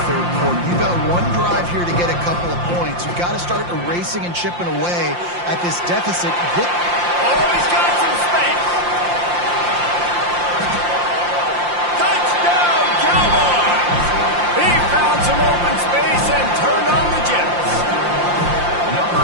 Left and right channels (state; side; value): late; left; 5.7 ms